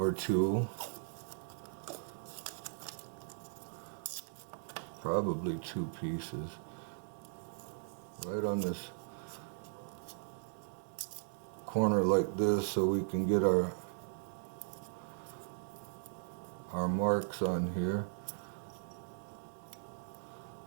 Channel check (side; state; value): left; silent; digital silence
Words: two, probably 2 pieces, right on this corner like this so we can get our marks on here.